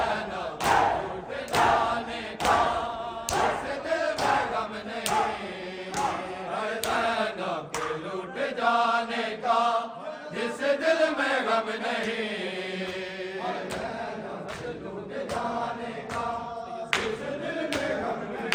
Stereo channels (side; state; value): both; identical; correlation 1.00